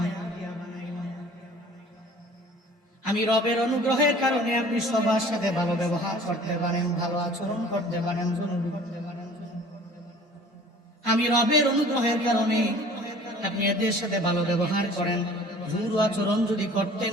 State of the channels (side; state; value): both; normal; correlation 0.48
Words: আমি রবের অনুগ্রহের কারণে আপনি সবার সাথে ভালো ব্যবহার করতে পারেন, ভালো আচরণ করতে পারেন, জুনুবি করতে পারেন। আমি রবের অনুগ্রহের কারণে আপনি এদের সাথে ভালো ব্যবহার করেন। জুরু আচরণ যদি করতেন,